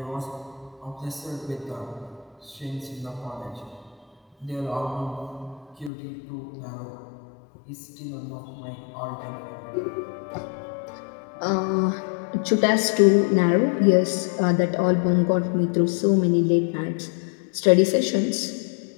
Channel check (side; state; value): right; drops out; at 5.9 s